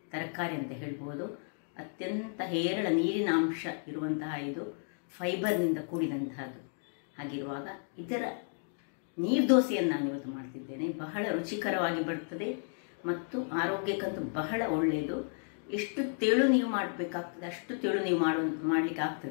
ತರಕಾರಿ ಅಂತ ಹೇಳ್ಬೋದು. ಅತ್ಯಂತ ಹೇರಳ ನೀರಿನ ಅಂಶ ಇರುವಂತಹ ಇದು ಫೈಬರ್ನಿಂದ ಕೂಡಿದಂತಹದ್ದು. ಹಾಗಿರುವಾಗ ಇದರ ನೀರ್ದೋಸೆಯನ್ನು ನಾನು ಇವತ್ತು ಮಾಡ್ತಿದ್ದೇನೆ. ಬಹಳ ರುಚಿಕರವಾಗಿ ಬರ್ತದೆ ಮತ್ತು ಆರೋಗ್ಯಕ್ಕಂತೂ ಬಹಳ ಒಳ್ಳೆಯದು. ಎಷ್ಟು ತೆಳು ನೀವು ಮಾಡಬೇಕಾಗ್ತದೆ ಅಷ್ಟು ತೆಳು ನೀವು ಮಾಡಲಿಕ್ಕೆ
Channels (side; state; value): right; silent; 56 dB below the other